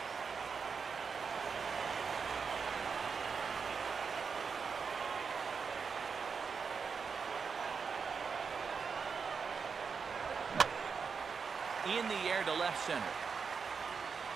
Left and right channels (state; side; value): quieter; left; 5.7 dB